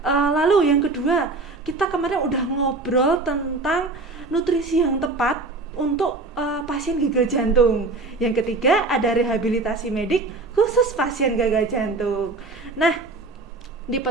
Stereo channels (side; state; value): left; quieter; 3.4 dB